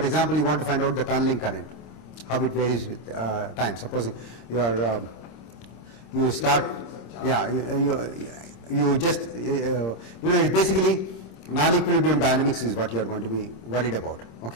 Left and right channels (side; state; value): right; late; 26 ms